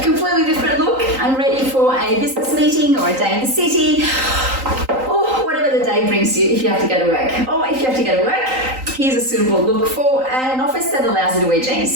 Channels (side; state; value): left; late; 3.9 ms